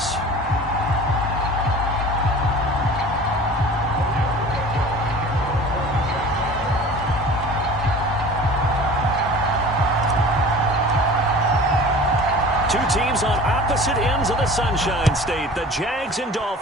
Two teams on opposite ends of the Sunshine State. The Jags and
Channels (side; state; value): both; normal; correlation 0.41